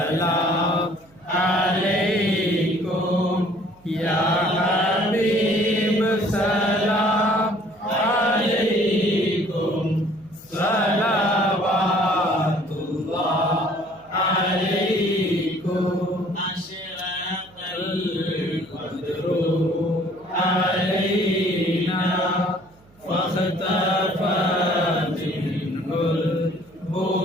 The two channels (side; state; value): right; noise; hum, 30 dB below the sound